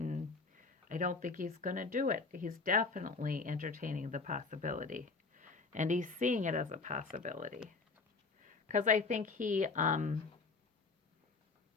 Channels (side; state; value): right; quieter; 4.3 dB